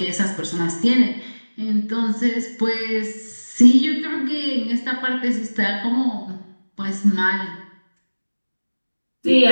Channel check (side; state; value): both; inverted; correlation -1.00